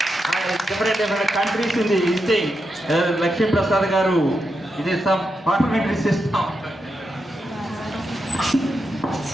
different countries in the visiting. Lakshmi Prasad garu, it is some parliamentary system.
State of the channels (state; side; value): normal; both; correlation 0.85